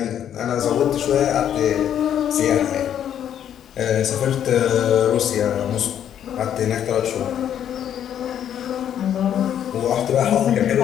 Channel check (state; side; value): quieter; right; 9.8 dB